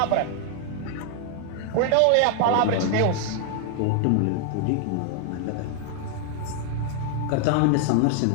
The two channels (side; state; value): both; different; correlation 0.00